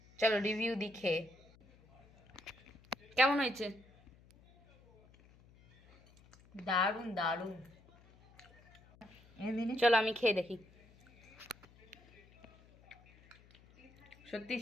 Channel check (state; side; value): noise; left; hum, 26 dB below the sound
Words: চলো রিভিউ দেখে কেমন হয়েছে। দারুণ দারুণ। চলো আমি খেয়ে দেখি। সত্যি